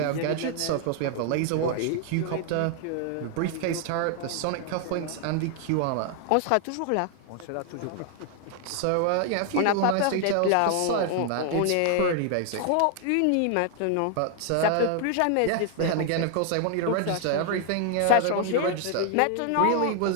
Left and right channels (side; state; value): both; different; correlation 0.00